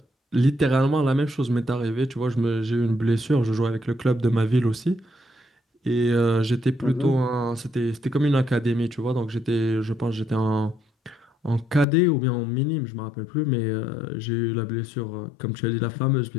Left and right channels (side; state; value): right; drops out; at 11.9 s